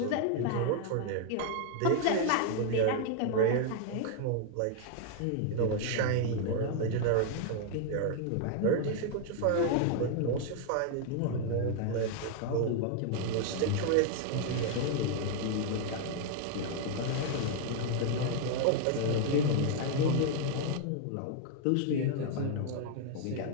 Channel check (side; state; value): both; different; correlation 0.00